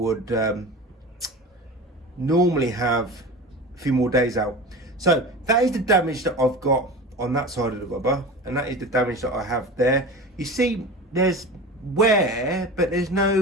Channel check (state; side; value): normal; both; correlation 0.32